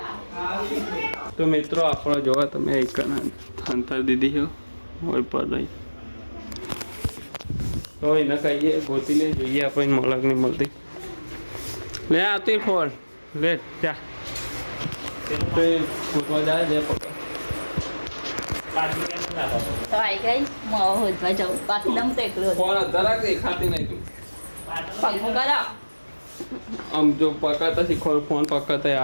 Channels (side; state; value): both; inverted; correlation -1.00